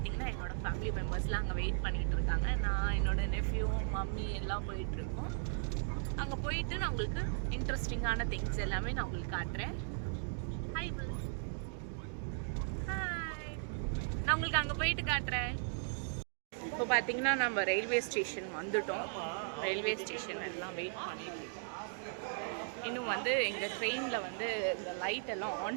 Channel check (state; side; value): silent; left; digital silence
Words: என்னோடய ஃபேமிலி மெம்பர்ஸ்லாம் அங்கே வெயிட் பண்ணிகிட்டு இருக்காங்க. நான் என்னோடய நெஃப்யூ மம்மி எல்லாம் போயிட்டுருக்கோம். அங்கே போயிட்டு நான் உங்களுக்கு இன்ட்ரெஸ்டிங்கான திங்ஸ் எல்லாமே நான் உங்களுக்கு காட்டுறேன். ஹாய் ஹாய், நான் உங்களுக்கு அங்கே போயிட்டு காட்டுறேன். இப்போ பார்த்தீங்கன்னா நம்ம ரயில்வே ஸ்டேஷன் வந்துட்டோம். ரயில்வே ஸ்டேஷன் எல்லாம் வெயிட் பண்ணிட்டு இருக்கோம். இன்னும் வந்து எங்கள் ட்ரெயினில் வந்து இந்த லைட் எல்லாம்